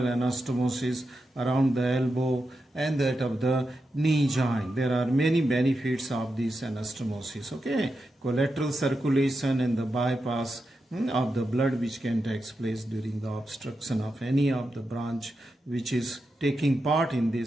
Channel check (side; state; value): both; normal; correlation 0.88